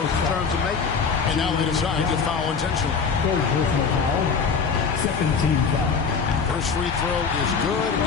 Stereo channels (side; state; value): right; quieter; 5.7 dB